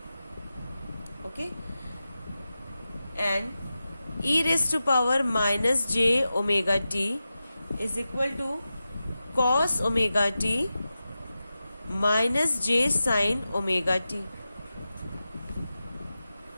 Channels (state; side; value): inverted; both; correlation -0.93